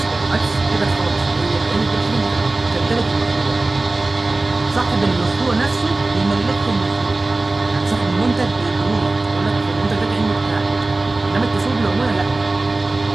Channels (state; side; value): quieter; left; 3.1 dB